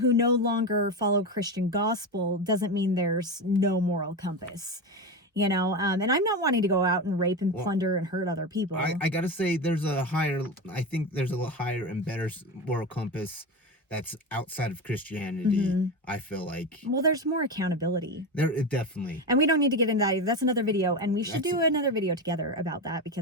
no longer follow Christian gospel doesn't mean there's no moral compass. You know, and I'm not wanting to go out and rape and plunder and hurt other people. I gotta say, I think there's a higher and better moral compass that's outside of Christianity. I feel like. Well, there's more accountability. Definitely. And we don't need to get into that either. That's another video, and we should do another video together about that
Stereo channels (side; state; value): both; normal; correlation 0.20